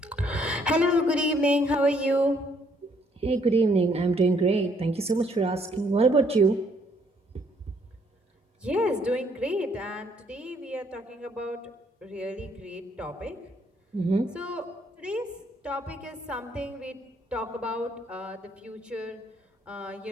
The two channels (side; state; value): both; normal; correlation 0.67